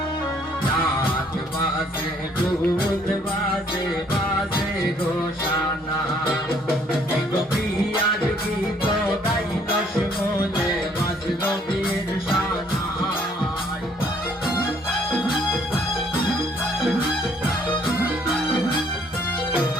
দুল বাজে বাজে ঘোষণা গোপিয়ার গীত গাইল শুনে বাজল বীর সানাই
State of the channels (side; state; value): both; normal; correlation 0.63